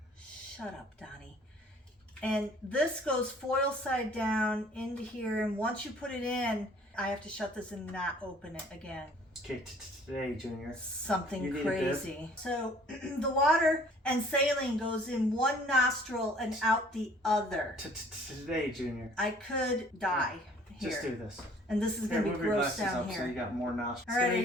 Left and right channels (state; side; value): normal; both; correlation 0.55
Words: Shut up, Donnie. And this goes foil side down into here. And once you put it in, I have to shut this and not open it again. Okay, today, Junior. Something You need a crazy. So the water and saline goes in one nostril and out the other. Today, Junior. I could die here. Just do this. And this is going to be Move your gross glasses down up here. so you got more nostrils. All right, are Stay